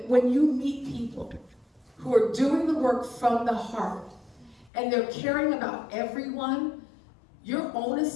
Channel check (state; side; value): drops out; right; at 4.7 s